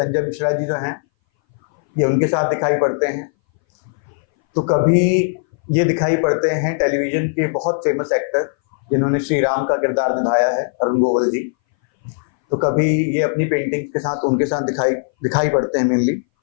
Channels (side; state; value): right; silent; 61 dB below the other